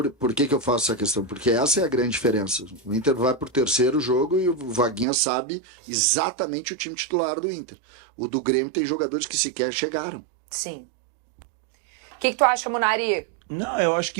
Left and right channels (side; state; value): left; drops out; at 5.1 s